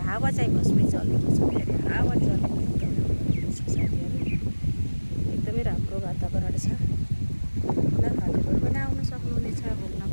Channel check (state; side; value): inverted; both; correlation -1.00